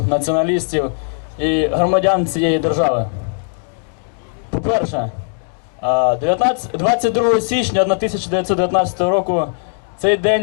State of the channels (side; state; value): right; silent; digital silence